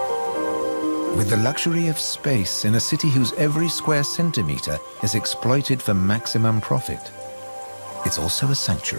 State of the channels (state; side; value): inverted; both; correlation -1.00